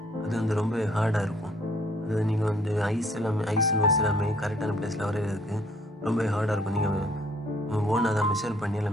அது வந்து ரொம்ப ஹார்டாக இருக்கும். அது நீங்கள் வந்து ஐஸ் நோட்ஸ் எல்லாமே கரெக்டான பிளேஸில் வரைகிறதுக்கு ரொம்ப ஹார்டாக இருக்கும். நீங்கள் ஓனாக தான் மெஷர் பண்ணி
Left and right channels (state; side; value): normal; both; correlation 0.62